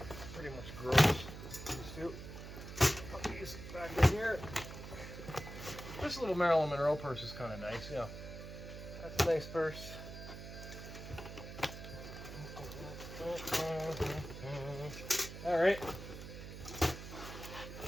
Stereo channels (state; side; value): noise; right; hum, 11 dB below the sound